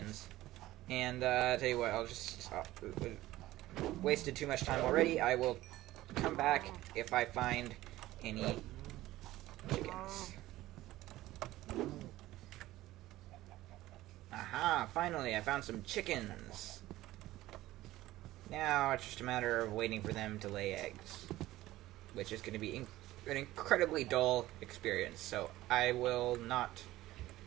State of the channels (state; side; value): quieter; left; 16.3 dB